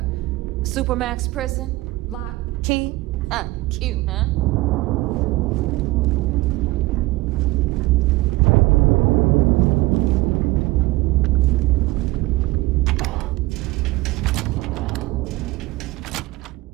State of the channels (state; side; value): quieter; left; 20.0 dB